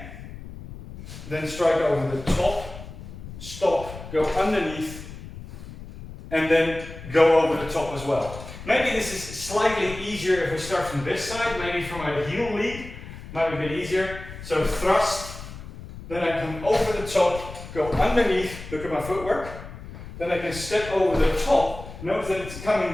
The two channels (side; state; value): left; noise; rumble, 13 dB below the sound